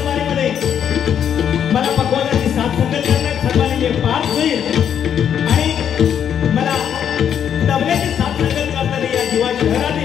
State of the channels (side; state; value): right; quieter; 8.7 dB